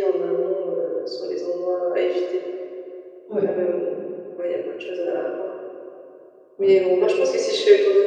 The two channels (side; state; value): both; identical; correlation 1.00